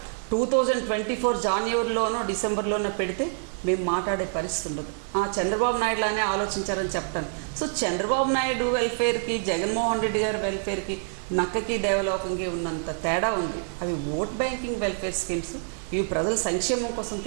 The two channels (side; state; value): left; silent; digital silence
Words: 2024 జనవరిలోనో డిసెంబర్లోనో పెడితే మేము మాట్లాడే పరిస్థితి ఉండదు. చంద్రబాబు నాయుడులానే ఆలోచించారని చెప్తాను. సో చంద్రబాబు నాయుడు వెల్ఫేర్కి, జగన్మోహన్ రెడ్డి గారి వెల్ఫేర్కి, నక్కకి దేవలోకంకి ఉన్నంత తేడా ఉంది. అవి ఓట్ బ్యాంకింగ్ వెల్ఫేర్ స్కీమ్స్, ఇవి ప్రజల సంక్షేమం కోసం